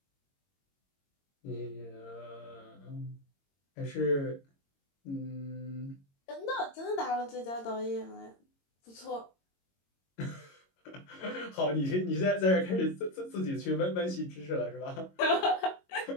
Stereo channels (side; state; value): right; late; 22 ms